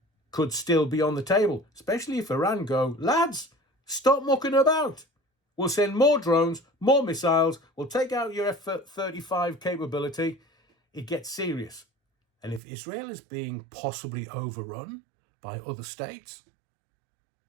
could still be on the table, especially if Iran go, lads, stop mucking about. We'll send more drones, more missiles. We'll take out your F-35 capability. It gets serious. And if Israel is being possibly overrun by other states,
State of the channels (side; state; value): left; drops out; at 12.6 s